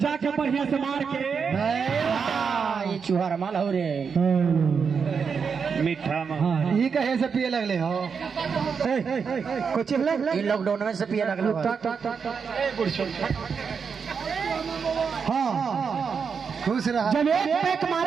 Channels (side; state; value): left; quieter; 6.0 dB